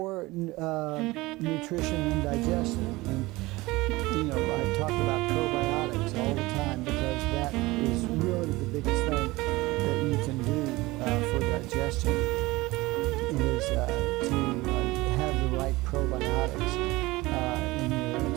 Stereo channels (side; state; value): left; quieter; 20.7 dB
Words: nutrition and digestion. And, I talk about probiotics all the time because that is really the biggest thing that you can do for digestion is to have the right probiotics in your